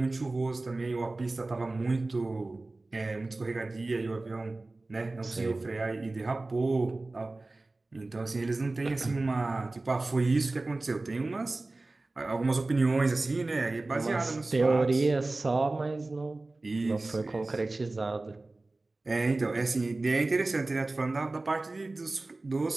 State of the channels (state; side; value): quieter; left; 3.1 dB